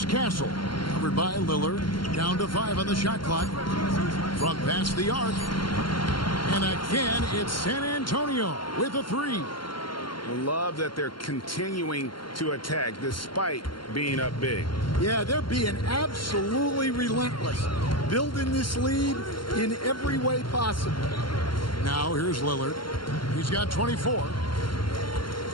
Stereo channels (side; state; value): right; late; 0.72 ms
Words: Castle. Covered by Lillard. Down to 5 on the shot clock. From past the arc. And again, it's San Antonio with a 3. I love that they're continuing to attack despite being up big. Yeah, they're being absolutely relentless. Building this lead in every way possible. Now here's Lillard. He's got 24.